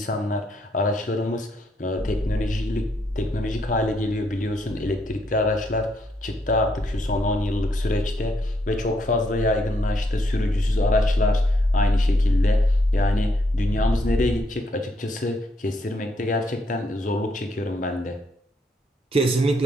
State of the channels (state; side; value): normal; both; correlation 0.74